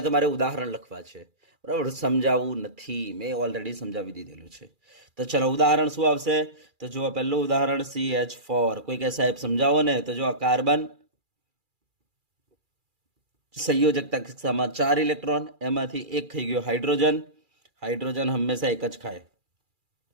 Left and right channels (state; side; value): late; left; 2.4 ms